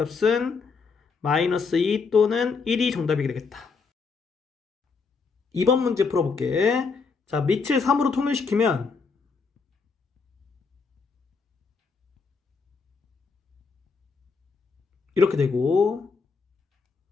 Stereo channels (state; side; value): quieter; right; 4.9 dB